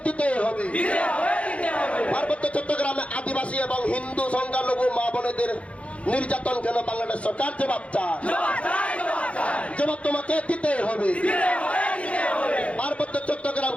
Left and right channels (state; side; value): late; right; 0.063 ms